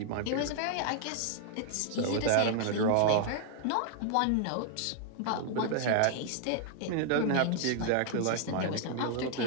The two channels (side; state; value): both; different; correlation 0.00